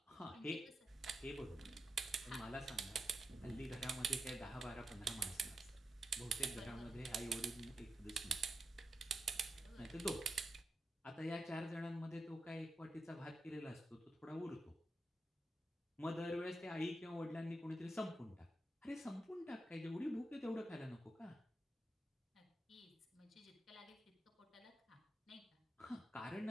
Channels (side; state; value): both; normal; correlation 0.86